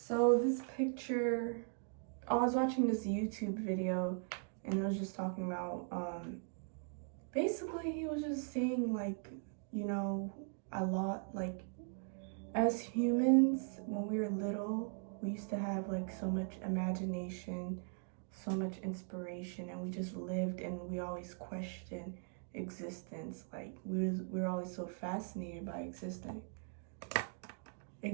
this picture, I was watching this YouTube video and it was just talking about, basically he was just saying like, you know, a lot, like as humans, when we were little, we used to have like so much imagination, so much inspiration, and we just lived and we always questioned existence. Like we were always so fascinated by existence.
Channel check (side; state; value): left; silent; 51 dB below the other